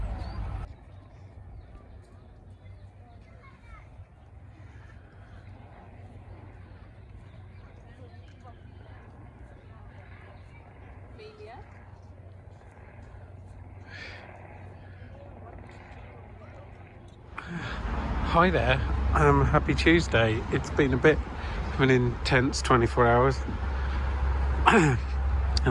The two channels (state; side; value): identical; both; correlation 1.00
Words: Amelia. Hi there. Happy Tuesday. It's been a bit of an intense 24 hours. And